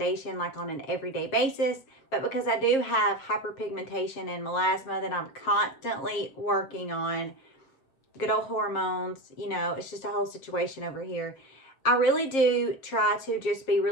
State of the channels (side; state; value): right; late; 7.5 ms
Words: like on an everyday basis, but because I do have hyperpigmentation and melasma that I'm constantly working on, good old hormones, it's just a whole situation over here. I really do try to just be